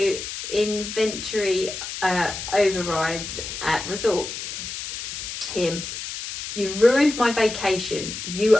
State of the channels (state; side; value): noise; left; hiss, 7 dB below the sound